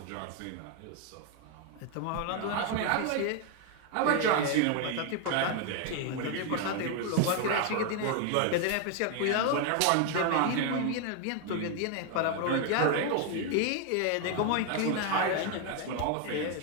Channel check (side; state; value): both; different; correlation 0.01